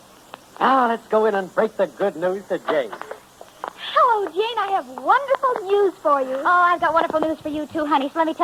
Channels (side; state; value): both; identical; correlation 1.00